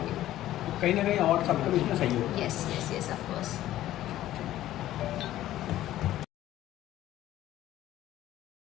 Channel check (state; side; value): quieter; right; 13.9 dB